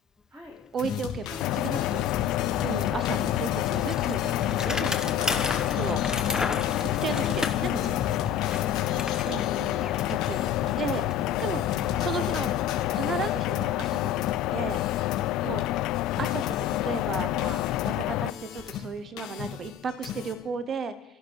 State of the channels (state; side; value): quieter; right; 7.4 dB